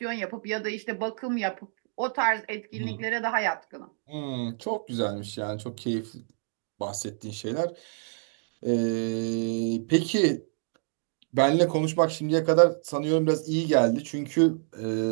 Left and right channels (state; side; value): silent; left; digital silence